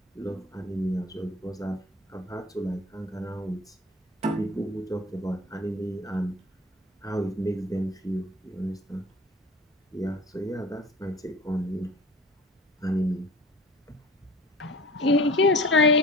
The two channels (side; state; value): both; normal; correlation 0.40